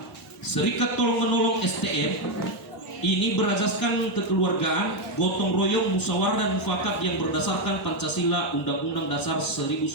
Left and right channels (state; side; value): normal; both; correlation 0.05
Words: Serikat Tolong Menolong STM ini berazaskan kekeluargaan, gotong royong, musyawarah dan mufakat yang berdasarkan Pancasila Undang-Undang Dasar